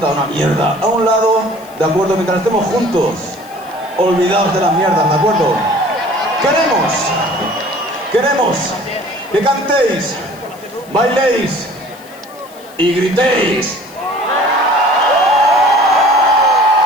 una mierda a un lado, ¿de acuerdo? Mientras estemos juntos, olvidaos de las mierdas, ¿de acuerdo? Queremos que cantéis, bailéis y gritéis.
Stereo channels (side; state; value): left; noise; hiss, 24 dB below the sound